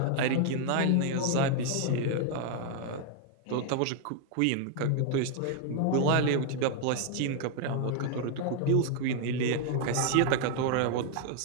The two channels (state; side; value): different; both; correlation 0.00